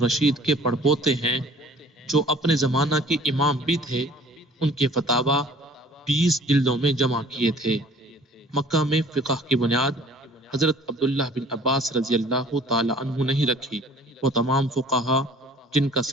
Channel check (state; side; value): normal; both; correlation 0.52